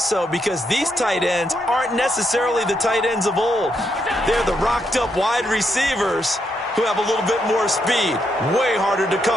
because these tight ends aren't necessarily the tight ends of old. They're the rocked-up wide receivers who have a little bit more speed. Way harder to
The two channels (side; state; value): both; normal; correlation 0.79